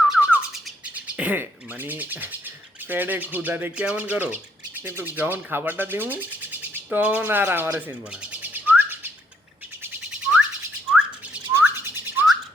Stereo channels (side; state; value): both; normal; correlation 0.71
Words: মানে পেটে ক্ষুধাতে কেমন করো, কিন্তু যখন খাবারটা দিব তখন আর আমারে চিনব না।